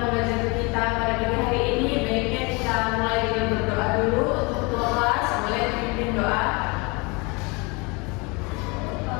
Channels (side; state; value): right; quieter; 28.2 dB